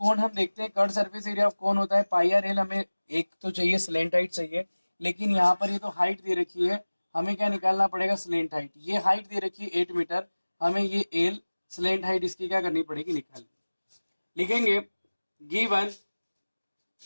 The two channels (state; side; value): inverted; both; correlation -1.00